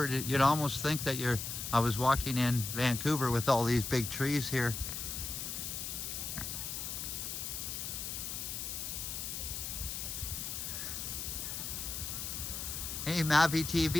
you'd almost think that I was walking in Vancouver with all these big trees here. Hey Mavi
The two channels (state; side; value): noise; left; hiss, 5 dB below the sound